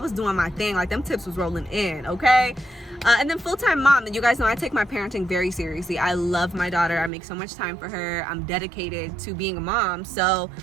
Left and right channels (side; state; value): left; drops out; at 7.1 s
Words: doing my thing, like them tips was rolling in, okay? And then full-time mom, and you guys know I take my parenting very seriously. I love my daughter, I make so much time for her, I'm dedicated to being a mom. So